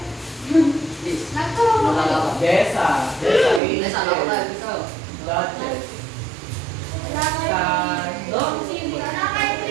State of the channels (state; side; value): drops out; left; at 3.6 s